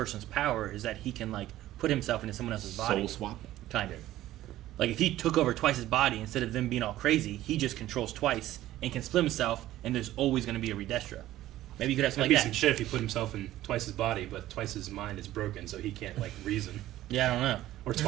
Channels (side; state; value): left; quieter; 14.5 dB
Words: power is that he can like put himself into someone else's body? Soul swap. Kind of. Like if he took over Twice's body, instead of them being all crazy, he just controls Twice and can split himself, and there's always going to be a Redestro. Maybe you could have That'd something be like some that. shit if he put himself in Twice's body, but Twice's mind is broken, so he can't, like, reason. Yeah, I don't know. Or There's